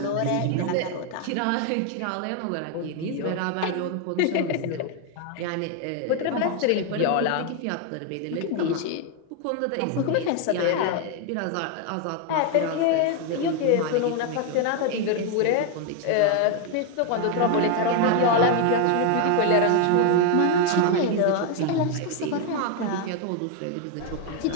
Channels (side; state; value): both; different; correlation 0.01